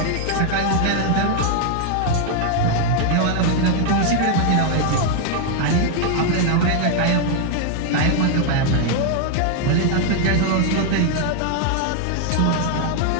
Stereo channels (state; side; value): different; both; correlation 0.00